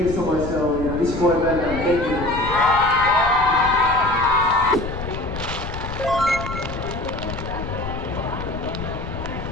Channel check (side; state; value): left; noise; rumble, 8 dB below the sound